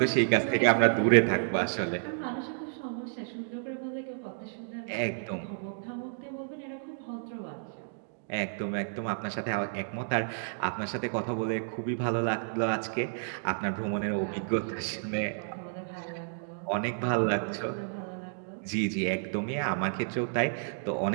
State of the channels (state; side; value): silent; left; digital silence